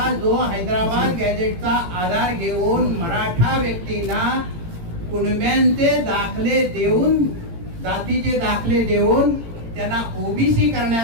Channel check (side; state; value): left; late; 18 ms